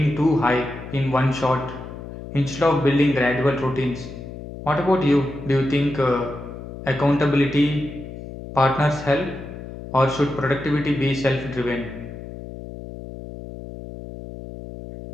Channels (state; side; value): noise; left; hum, 12 dB below the sound